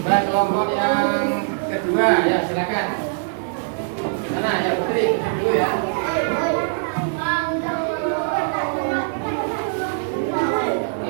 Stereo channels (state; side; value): silent; left; digital silence